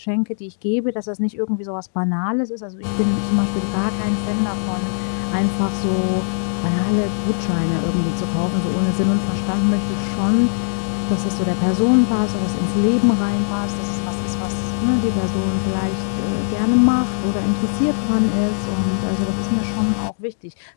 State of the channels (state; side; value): silent; right; digital silence